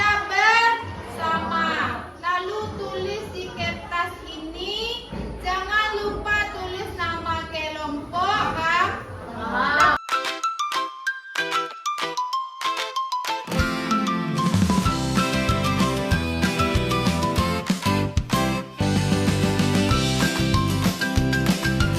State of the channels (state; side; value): identical; both; correlation 1.00